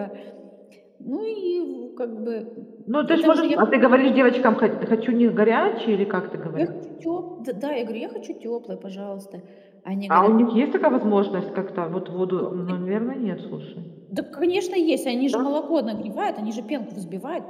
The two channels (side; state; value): both; identical; correlation 1.00